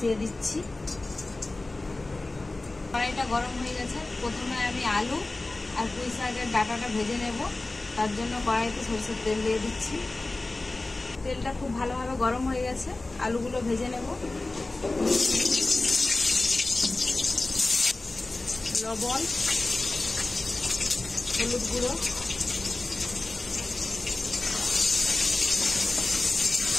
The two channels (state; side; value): quieter; right; 3.1 dB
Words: দিচ্ছি। কড়াইটা গরম হয়ে গেছে। প্রথমে আমি আলু আর পুঁই শাকের ডাঁটাটা ভেজে নেব। তার জন্য কড়াইতে সরষের তেল দিয়ে দিচ্ছি। তেলটা খুব ভালোভাবে গরম হয়ে গেছে, আলুগুলো ভেজে নেব। লবণ, হলুদ গুঁড়ো,